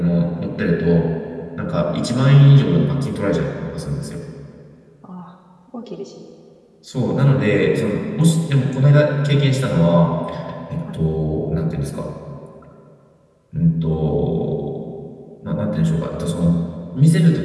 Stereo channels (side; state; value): both; identical; correlation 1.00